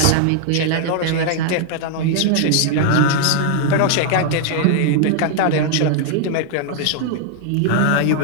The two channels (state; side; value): different; both; correlation 0.00